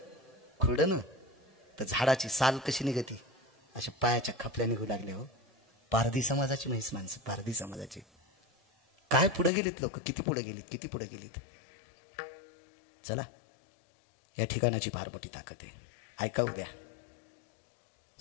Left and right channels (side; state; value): right; drops out; at 9.5 s